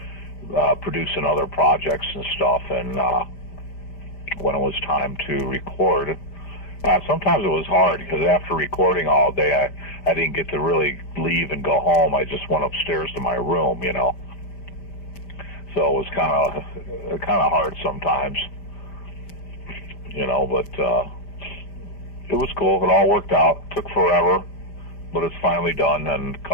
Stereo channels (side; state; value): right; late; 5.0 ms